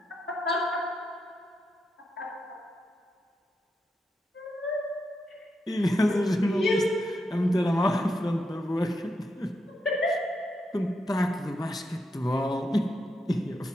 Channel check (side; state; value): both; normal; correlation 0.84